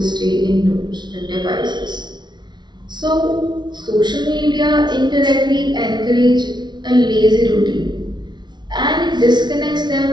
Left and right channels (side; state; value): left; late; 0.21 ms